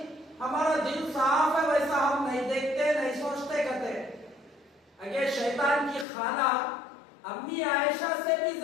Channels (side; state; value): right; drops out; at 6.1 s